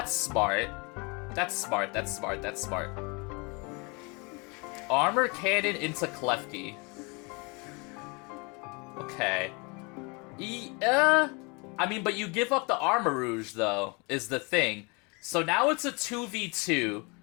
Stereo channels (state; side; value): quieter; right; 29.9 dB